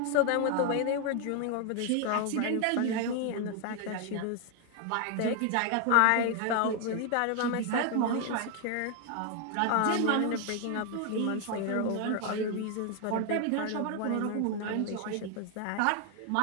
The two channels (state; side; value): different; both; correlation 0.01